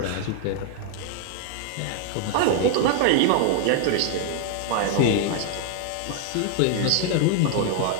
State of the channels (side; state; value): both; different; correlation 0.00